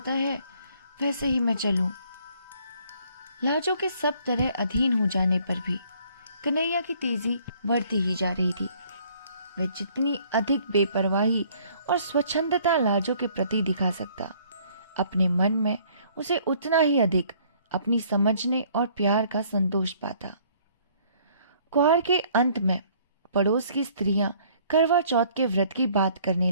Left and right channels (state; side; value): inverted; both; correlation -0.60